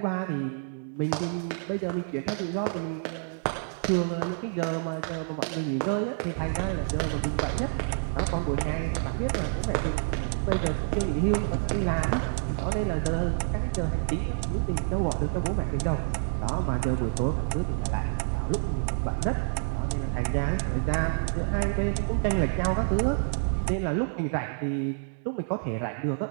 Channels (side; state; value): left; silent; digital silence